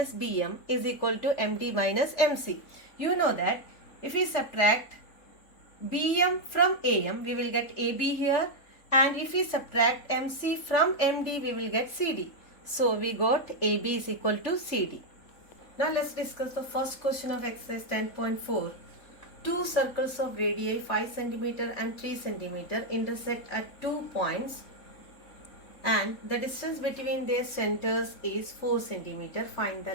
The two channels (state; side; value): late; right; 3.8 ms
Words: BM is equal to MD minus MC. You know that if we subtract BM from AM, we will get AB here, and if we subtract MC from MD, we will get CD. So we got AB is equal to CD. Now let's discuss the first question of exercise 10.4. Two circles of radii 5 cm and 3 cm intersect at 2 points, and the distance between their centers is 4 cm. Find the